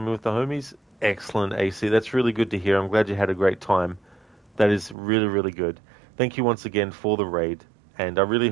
with the homies. Excellent, AC, that's really good to hear. I'm glad you had a great time. That is really, really good. Thank you once again for the raid, and I really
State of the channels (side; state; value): left; drops out; at 5.0 s